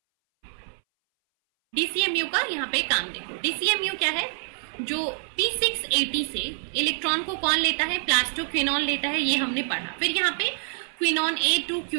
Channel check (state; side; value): silent; left; 59 dB below the other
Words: DCMU का यहाँ पे काम देखो. DCMU क्या है, जो P680 से इलेक्ट्रॉन को कौन लेता है, प्लास्टोक्विनोन लेता है, ये हमने पढ़ा. फिर यहाँ पे quinone A to